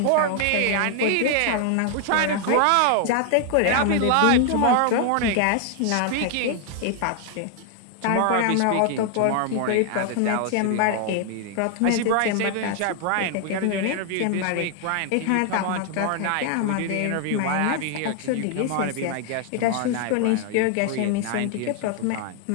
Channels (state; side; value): different; both; correlation 0.00